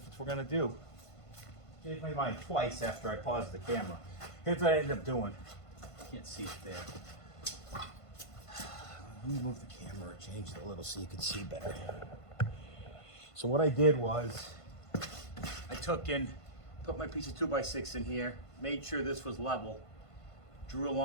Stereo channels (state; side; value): late; right; 1.5 ms